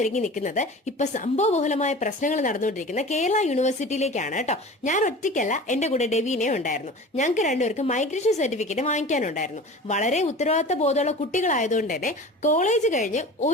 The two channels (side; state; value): both; normal; correlation 0.37